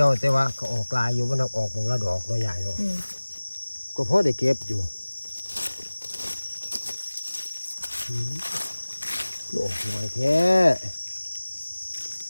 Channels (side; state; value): both; inverted; correlation -1.00